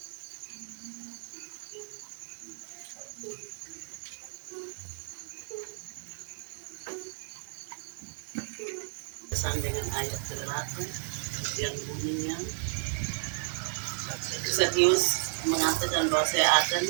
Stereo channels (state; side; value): silent; left; 55 dB below the other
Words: Pesan dengan ayat ke-8 yang bunyinya, Sakeus mengatakan bahwa saya akan